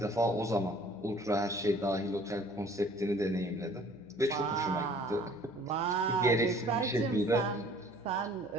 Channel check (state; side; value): noise; left; hum, 26 dB below the sound